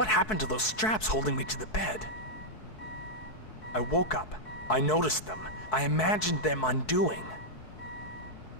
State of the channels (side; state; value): right; late; 4.6 ms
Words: happened to those straps holding me to the bed? I woke up. I noticed them. I imagined them undoing.